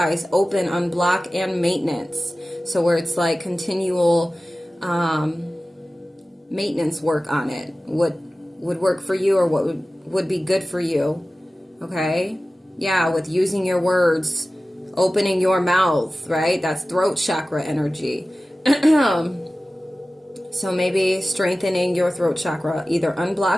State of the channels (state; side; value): normal; both; correlation 0.96